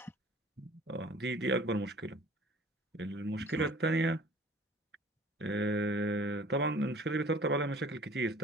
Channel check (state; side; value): normal; both; correlation 0.49